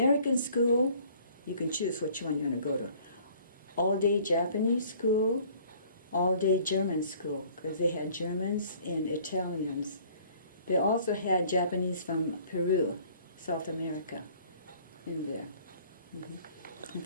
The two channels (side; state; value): both; inverted; correlation -0.55